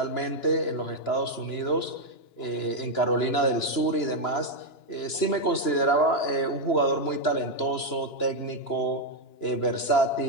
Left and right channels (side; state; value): right; late; 2.9 ms